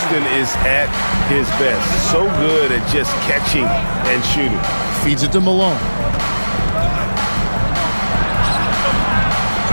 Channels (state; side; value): inverted; both; correlation -1.00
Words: is at his best. So good at just catching and shooting. Feeds it to Malone.